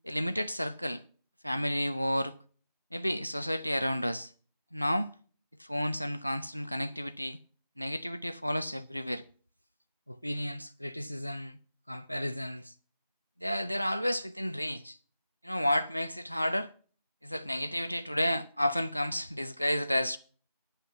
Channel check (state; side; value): inverted; both; correlation -0.95